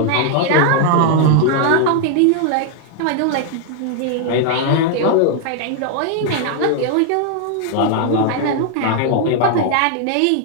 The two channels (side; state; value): both; different; correlation 0.00